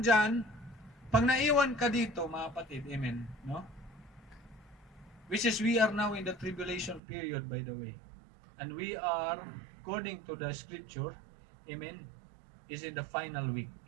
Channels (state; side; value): drops out; left; at 7.0 s